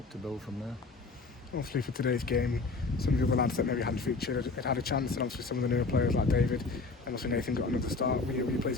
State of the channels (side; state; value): right; quieter; 3.9 dB